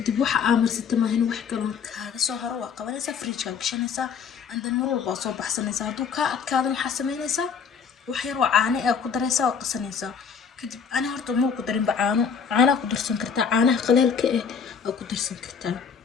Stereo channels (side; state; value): right; quieter; 6.5 dB